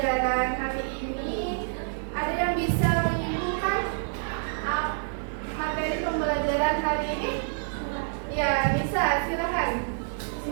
hari ini, ada yang bisa menyimpulkan materi pembelajaran hari ini? Ya, bisa. Silakan.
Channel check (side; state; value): left; silent; 60 dB below the other